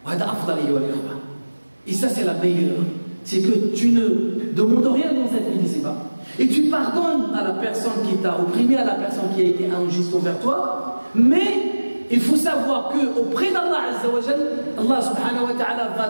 وهذا أفضل أيها الإخوة. Et ça c'est la meilleure c'est que tu ne demandes rien dans cette vie ici-bas. Et tu pardonnes à la personne qui t'a opprimé, à la personne qui a été injuste envers toi, mais il faut savoir qu'auprès d'Allah Azza wa Jal, Allah subhanahu wa ta'ala va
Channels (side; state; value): both; inverted; correlation -1.00